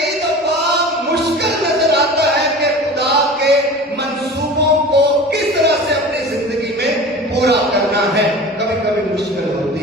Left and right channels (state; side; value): normal; both; correlation 0.37